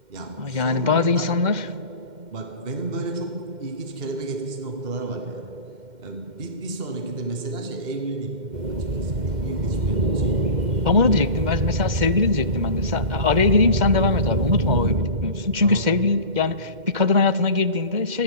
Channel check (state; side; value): late; left; 2.1 ms